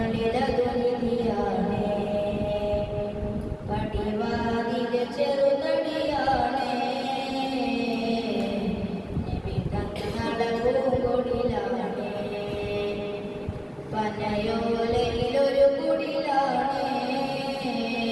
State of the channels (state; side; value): identical; both; correlation 1.00